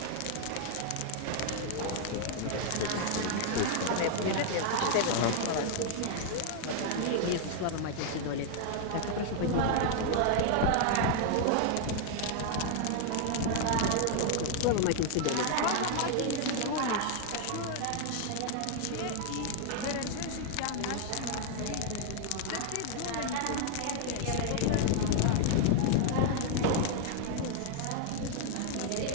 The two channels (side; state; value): both; different; correlation 0.00